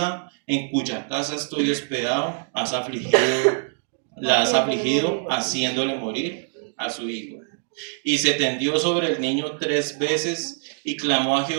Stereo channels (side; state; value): left; silent; 63 dB below the other